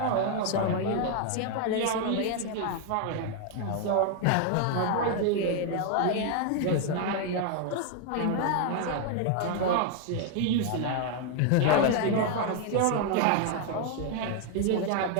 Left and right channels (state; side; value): different; both; correlation 0.00